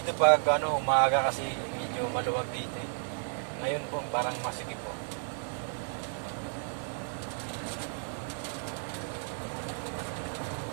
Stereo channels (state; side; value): silent; left; 56 dB below the other